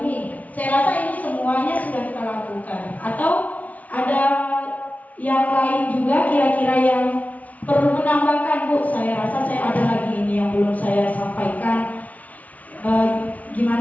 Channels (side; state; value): right; late; 0.071 ms